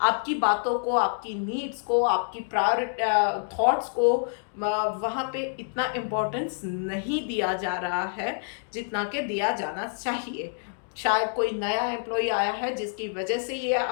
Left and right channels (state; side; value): silent; right; digital silence